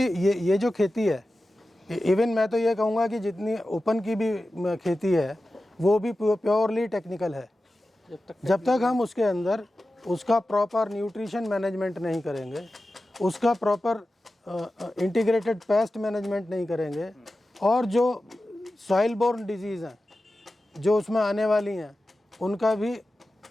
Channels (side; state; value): both; normal; correlation 0.94